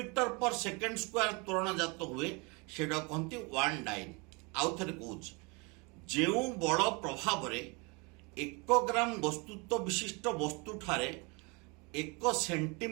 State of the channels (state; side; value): quieter; left; 29.8 dB